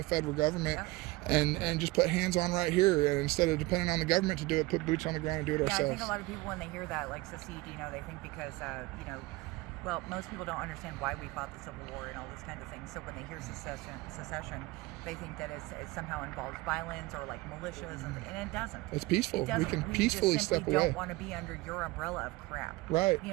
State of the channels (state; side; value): quieter; left; 20.9 dB